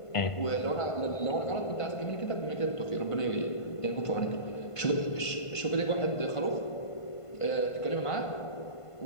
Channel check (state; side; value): late; right; 1.5 ms